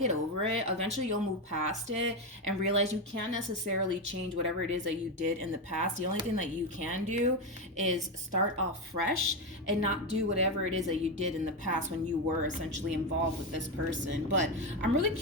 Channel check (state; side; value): normal; both; correlation 0.11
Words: over it. Eventually you'll move past it and realize you can't necessarily change whatever it is that you did in the past. The only thing that you can do is start off fresh and not do whatever it is that you did in the past when you were essentially involved with this person. But I'm really